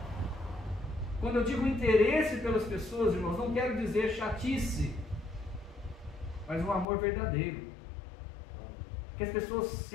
Quando eu digo interesse pelas pessoas, irmãos, não quero dizer chatice, mas um amor verdadeiro. Que as pessoas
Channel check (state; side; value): drops out; right; at 6.9 s